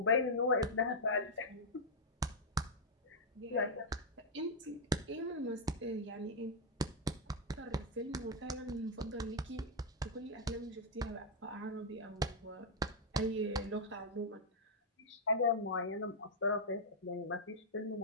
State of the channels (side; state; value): both; normal; correlation -0.04